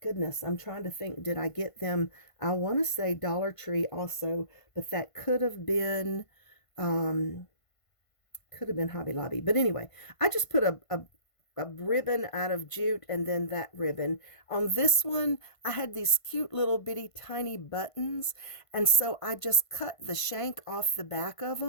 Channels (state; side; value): late; right; 1.5 ms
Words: I'm trying to think, did I get them? I want to say Dollar Tree also, but that could have been Hobby Lobby. But anyway, I just put a ribbon out of jute and then that ribbon. On this one, I had these cute little bitty tiny buttons, and so I just cut the shank off the back of